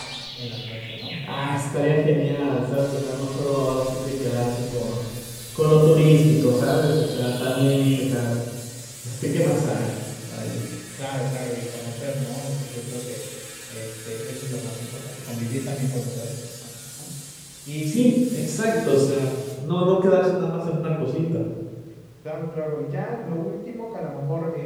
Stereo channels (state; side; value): identical; both; correlation 1.00